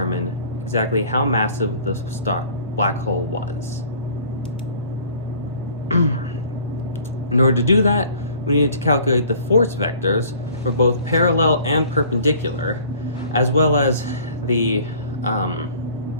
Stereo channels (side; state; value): both; inverted; correlation -0.51